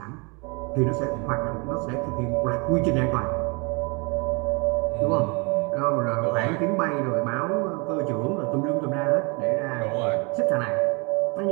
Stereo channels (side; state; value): left; quieter; 30.6 dB